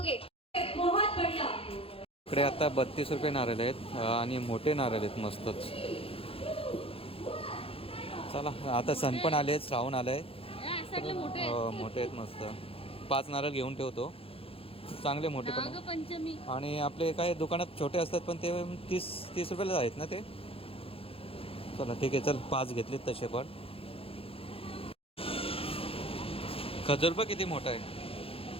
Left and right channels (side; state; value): right; late; 0.27 ms